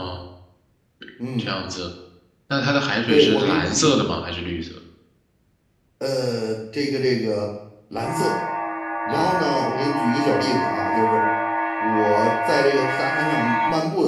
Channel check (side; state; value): both; identical; correlation 1.00